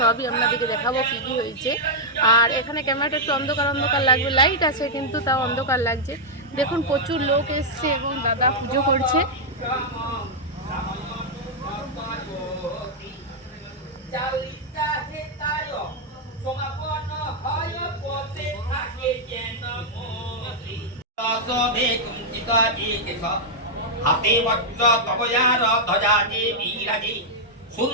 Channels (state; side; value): normal; both; correlation -0.04